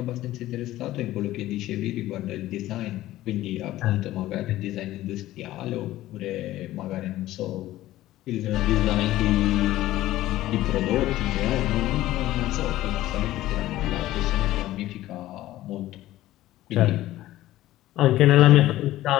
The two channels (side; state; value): right; quieter; 15.3 dB